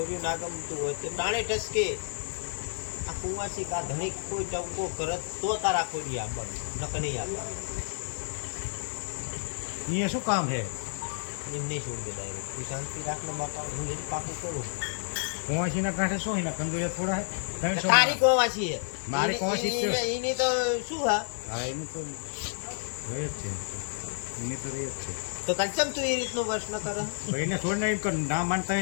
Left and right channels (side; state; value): right; silent; digital silence